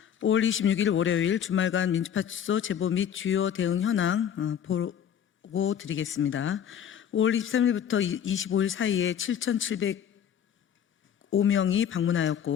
5월 26일 월요일 주말간 민주파출소 제보 및 주요 대응 현황 보고 드리겠습니다. 5월 23일부터 25일 사이에 7,705명이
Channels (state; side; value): quieter; right; 9.0 dB